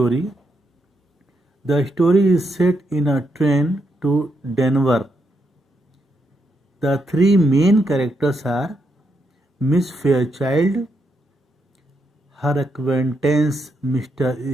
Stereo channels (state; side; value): normal; both; correlation 0.80